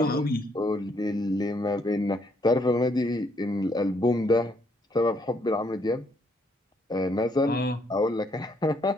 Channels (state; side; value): normal; both; correlation 0.71